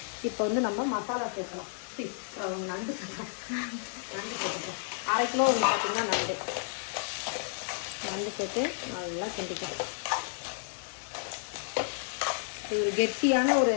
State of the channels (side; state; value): right; silent; digital silence